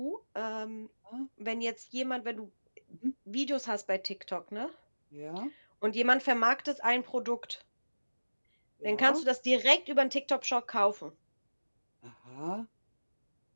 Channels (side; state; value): both; inverted; correlation -1.00